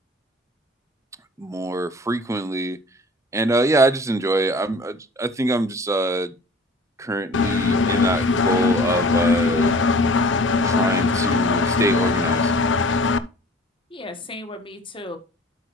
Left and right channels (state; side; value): normal; both; correlation 0.46